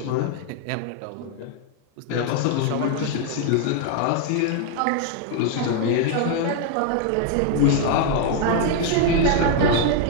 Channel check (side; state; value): both; different; correlation 0.00